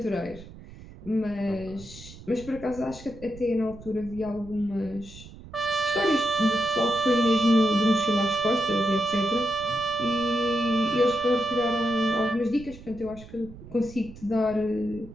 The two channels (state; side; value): noise; right; rumble, 17 dB below the sound